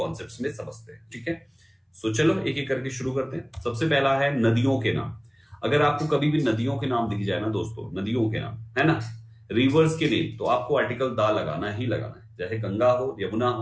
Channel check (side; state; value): both; identical; correlation 1.00